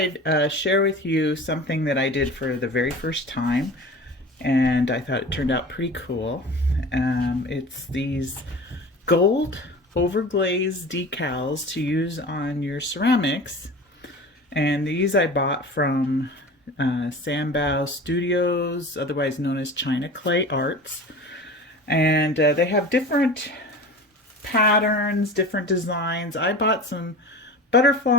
share with you something that I did for the very first time, and I thought it turned out pretty cool. It's these gold overglaze decals to use on your ceramics, and these I bought from Sanbao Studios, otherwise known as China Clay Arts, and they have different patterns, different designs. I bought some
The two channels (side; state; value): both; normal; correlation 0.36